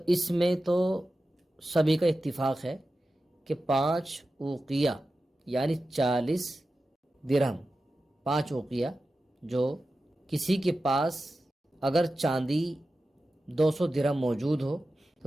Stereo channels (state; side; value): normal; both; correlation 0.93